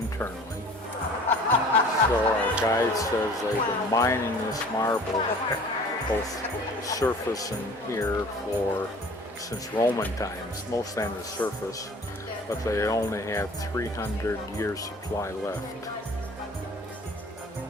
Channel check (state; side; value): normal; both; correlation 0.47